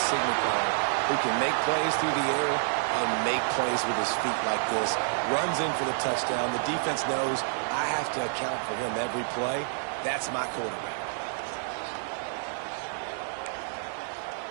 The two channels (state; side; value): silent; left; 59 dB below the other